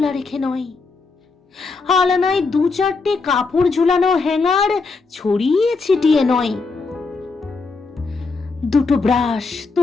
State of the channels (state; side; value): quieter; right; 4.2 dB